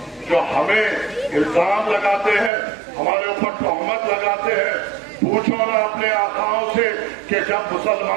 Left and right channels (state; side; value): drops out; left; at 2.5 s